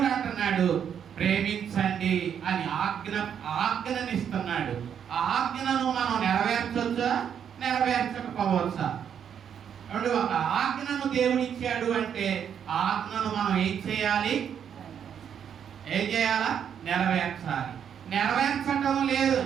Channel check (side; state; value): left; quieter; 8.3 dB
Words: అంటున్నాడు ప్రేమించండి అని ఆజ్ఞనిస్తున్నాడు. ఆ ఆజ్ఞను మనం నెరవేర్చొచ్చా, నెరవేర్చకపోవచ్చా? ఒక ఆజ్ఞను దేవుడు ఇచ్చాడు అంటే ఆ ఆజ్ఞను మనం ఏం చేయాలి? ఏం చేయాలా? నెరవేర్చాలి. నెరవేర్చటం లేదు.